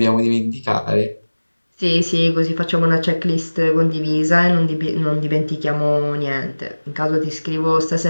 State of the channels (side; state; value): both; inverted; correlation -1.00